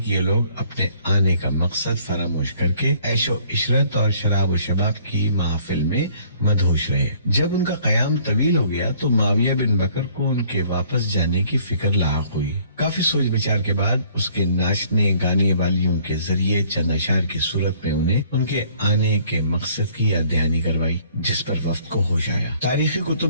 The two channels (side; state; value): both; inverted; correlation -0.59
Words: یہ لوگ اپنے آنے کا مقصد فراموش کر کے عیش و عشرت اور شراب و شباب کی محافل میں مدہوش رہے۔ جب ان کا قیام طویل ہو گیا تو معاویہ بن بکر کو ان کے واپس جانے کی فکر لاحق ہوئی۔ کافی سوچ بچار کے بعد اس کے ناچنے گانے والیوں کے ذریعے چند اشعار کی صورت میں انہیں ان کے آنے کے مقصد کی یاد دہانی کروائی، جس پر وفد کو ہوش آیا۔ تاریخی کتب